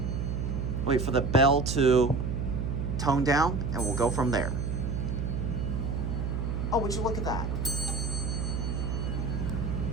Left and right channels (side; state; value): right; noise; hum, 1 dB below the sound